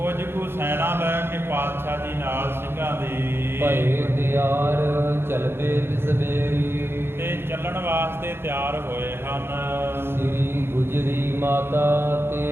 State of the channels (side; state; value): left; late; 0.11 ms